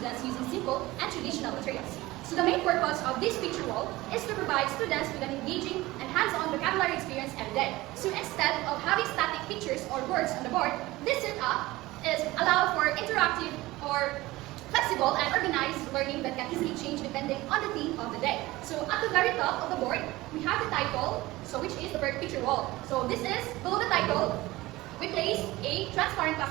using simple and traditional materials. So the main purpose of this picture wall is to provide students with an engaging and hands-on vocabulary experience every day. So instead of having static pictures or words on the board, this setup is allow for interactive or flexible and organized learning that can easily change depending on the theme of the day. So at the very top of the board, we have the title, which is the word picture wall. So this is, below the title, we place a transparent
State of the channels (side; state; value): left; quieter; 19.0 dB